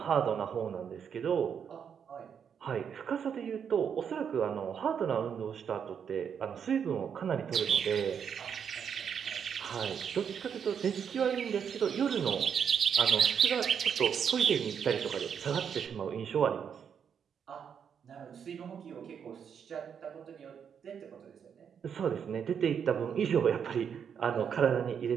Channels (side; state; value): left; quieter; 7.5 dB